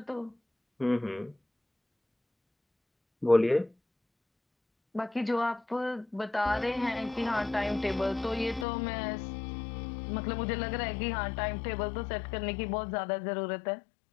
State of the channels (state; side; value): drops out; right; at 8.7 s